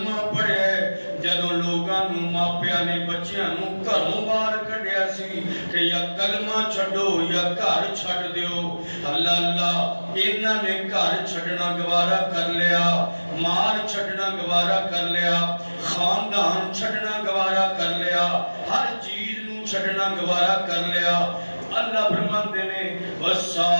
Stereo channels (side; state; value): both; inverted; correlation -1.00